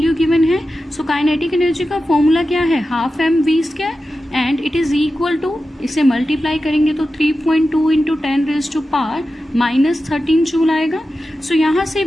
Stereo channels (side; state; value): both; normal; correlation 0.92